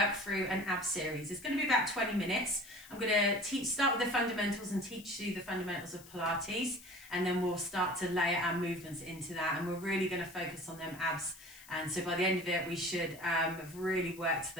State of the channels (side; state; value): left; noise; hiss, 20 dB below the sound